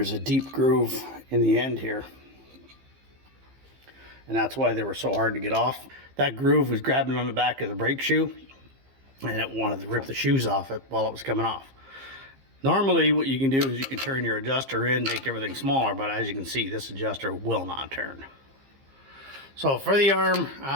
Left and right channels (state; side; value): late; left; 15 ms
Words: a deep groove in the end here, and that's why they were so hard to get off. That groove was grabbing on the back of the brake shoe, and it wanted to rip the shoes off it while it was coming off. Normally what you can do is you can turn your adjuster in, make everything smaller, but as you can see, this adjuster will not turn. So for the arm,